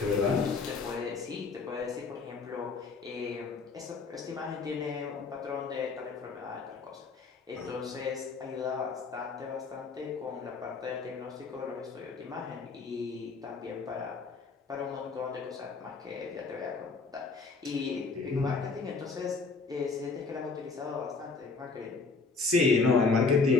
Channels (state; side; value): quieter; right; 4.3 dB